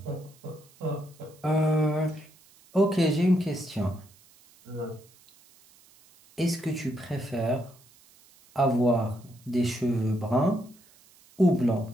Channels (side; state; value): right; noise; hiss, 28 dB below the sound